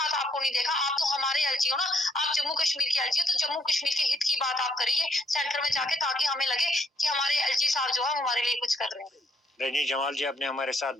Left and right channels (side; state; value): both; normal; correlation 0.70